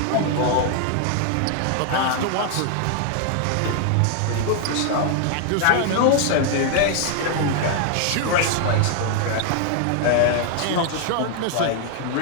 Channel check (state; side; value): different; both; correlation 0.00